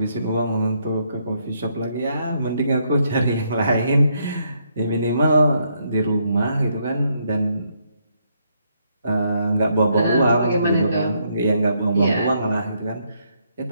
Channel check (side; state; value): both; inverted; correlation -0.74